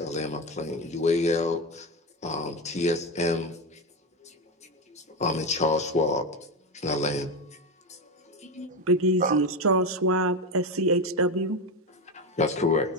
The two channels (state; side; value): normal; both; correlation 0.15